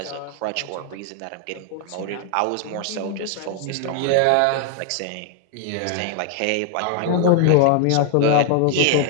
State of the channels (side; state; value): both; different; correlation 0.00